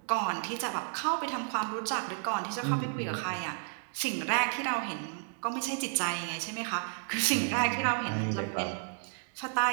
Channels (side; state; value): left; silent; 55 dB below the other